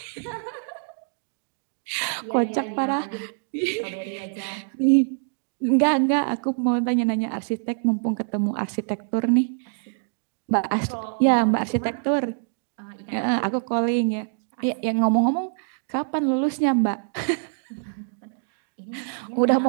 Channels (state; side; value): silent; left; digital silence